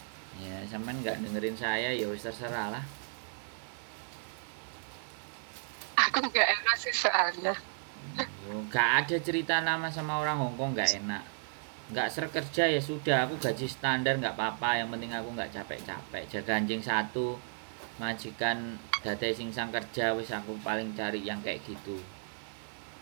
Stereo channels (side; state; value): left; silent; 55 dB below the other